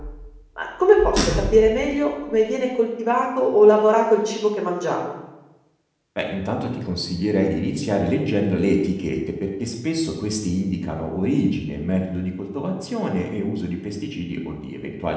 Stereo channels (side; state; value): both; identical; correlation 1.00